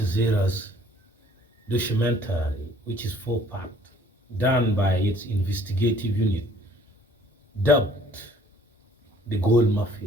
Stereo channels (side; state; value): both; normal; correlation 0.57